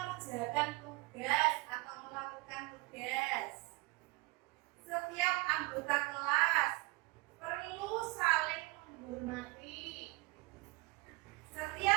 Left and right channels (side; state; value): left; quieter; 23.9 dB